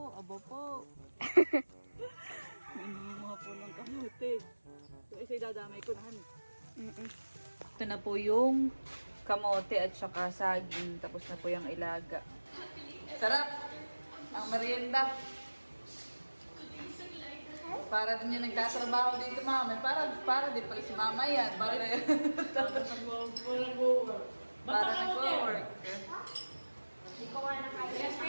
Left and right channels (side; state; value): both; inverted; correlation -1.00